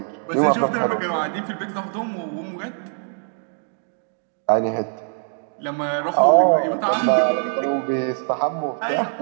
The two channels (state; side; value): silent; left; 57 dB below the other